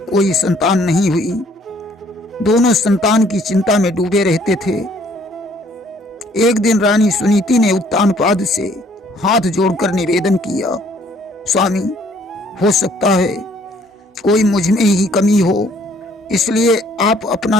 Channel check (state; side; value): normal; both; correlation 0.61